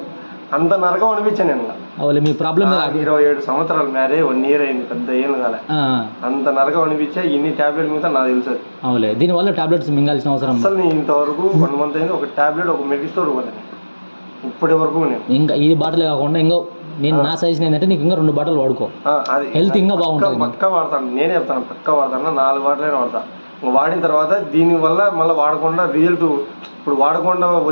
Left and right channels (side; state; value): both; inverted; correlation -1.00